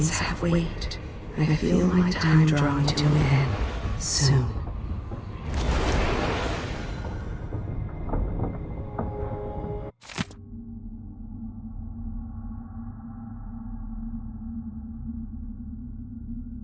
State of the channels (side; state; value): both; identical; correlation 1.00